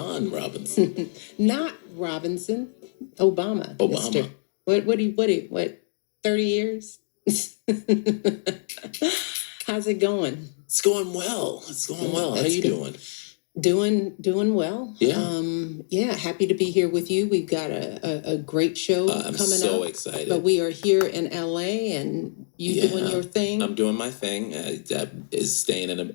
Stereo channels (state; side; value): silent; right; digital silence